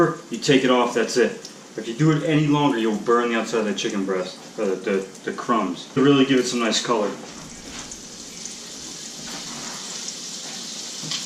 you take it off, that's it. If you do it any longer, you'll burn the outside of the chicken breast, or the crumbs. To really give it some nice color.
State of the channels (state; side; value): identical; both; correlation 1.00